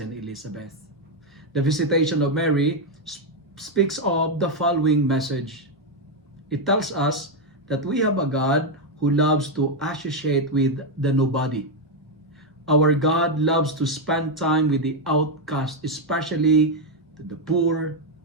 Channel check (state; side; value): normal; both; correlation 0.03